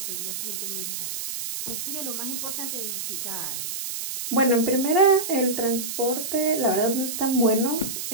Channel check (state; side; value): noise; right; hiss, 5 dB below the sound